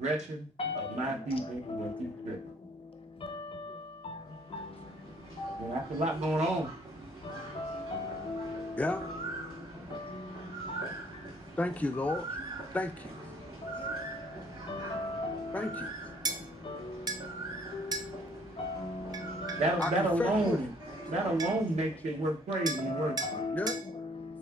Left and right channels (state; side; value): normal; both; correlation 0.59